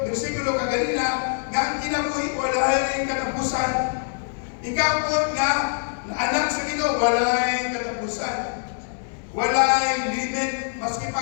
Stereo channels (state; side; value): silent; right; 63 dB below the other